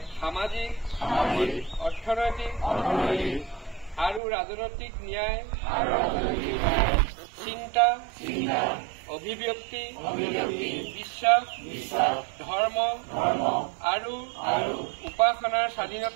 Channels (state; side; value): drops out; left; at 4.2 s